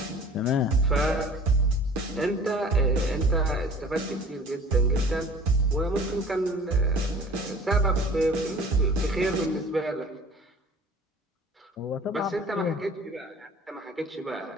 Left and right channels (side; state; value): both; normal; correlation 0.46